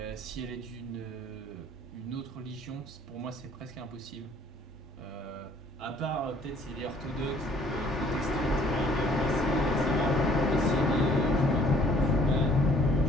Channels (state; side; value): normal; both; correlation 0.59